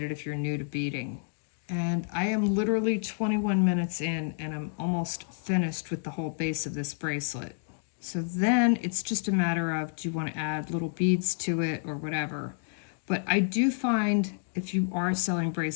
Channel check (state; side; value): silent; right; digital silence